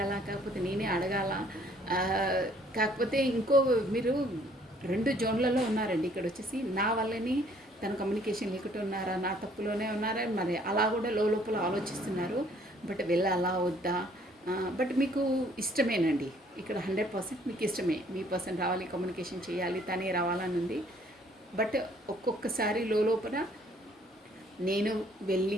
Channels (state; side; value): normal; both; correlation 0.61